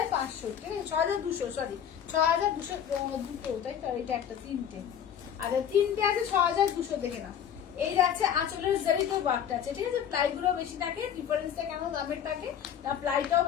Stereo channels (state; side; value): quieter; right; 9.0 dB